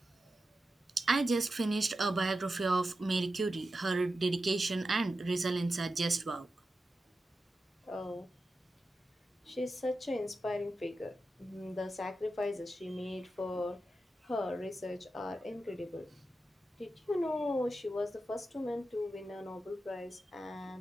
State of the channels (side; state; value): both; normal; correlation 0.91